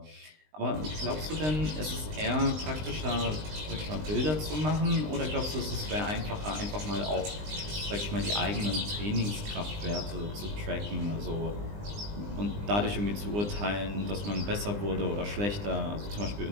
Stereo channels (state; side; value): late; left; 20 ms